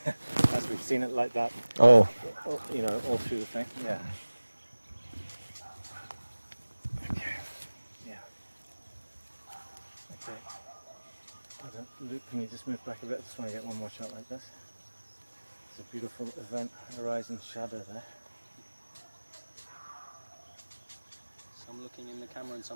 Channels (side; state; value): both; inverted; correlation -1.00